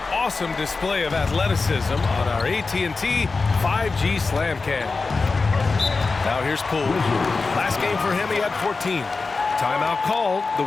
awesome display of athleticism on our AT&T 5G Slam Cam. Now here's Poole. Last game for him, he had 14. Timeout called, the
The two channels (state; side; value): quieter; right; 4.1 dB